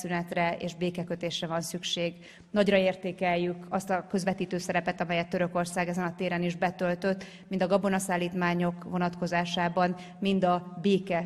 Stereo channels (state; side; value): identical; both; correlation 1.00